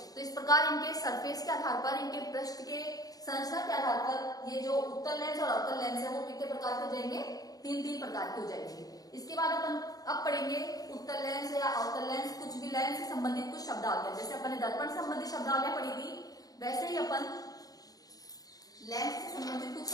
तो इस प्रकार इनके सरफेस के आधार पर, इनके पृष्ठ के संरचना के आधार पर ये जो उत्तल लेंस और अवतल लेंस है वो कितने प्रकार के हो जाएंगे, तीन तीन प्रकार के हो जाएंगे। इसके बाद अपन अब पढ़ेंगे उत्तल लेंस या अवतल लेंस, कुछ भी लेंस से संबंधित कुछ शब्दावलियां। जैसे अपन ने दर्पण संबंधित शब्दावलियां पढ़ी थी, वैसे ही अपन लेंस से संबंधित कुछ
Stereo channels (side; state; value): right; late; 0.18 ms